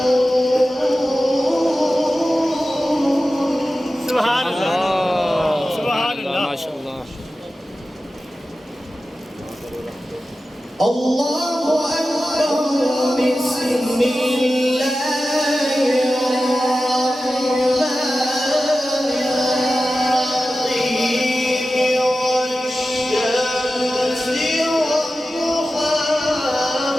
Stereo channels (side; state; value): both; normal; correlation 0.94